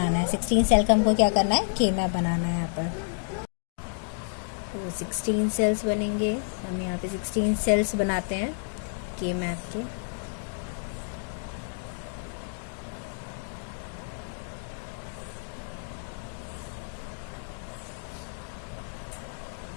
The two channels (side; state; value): right; silent; digital silence